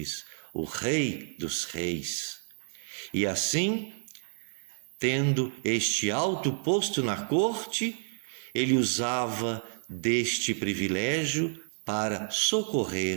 o Rei dos reis. E assim, tendo este alto posto na corte, ele usava deste privilégio para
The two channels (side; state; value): left; silent; digital silence